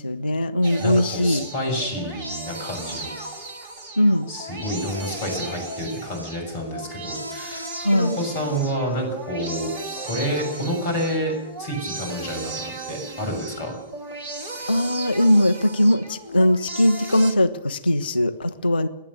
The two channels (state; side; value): inverted; both; correlation -0.76